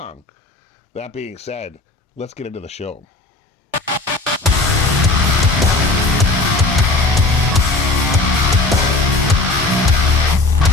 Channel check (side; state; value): right; quieter; 3.2 dB